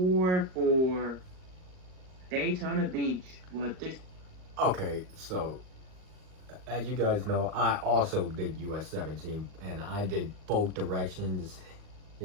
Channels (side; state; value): left; late; 38 ms